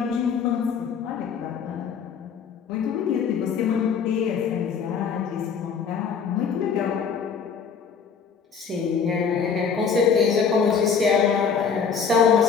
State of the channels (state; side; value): quieter; right; 6.4 dB